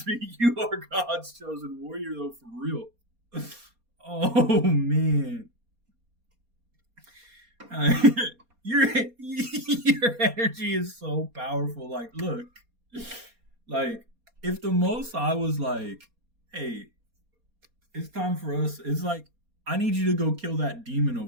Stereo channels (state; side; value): late; left; 4.2 ms